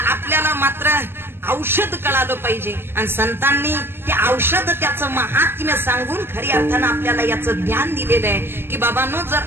मात्र औषध कळालं पाहिजे आणि संतांनी ते औषध त्याचं महात्म्य सांगून खरी अर्थानं आपल्याला याचं ज्ञान दिलेलं आहे की बाबांनो, जर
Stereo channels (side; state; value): left; late; 0.11 ms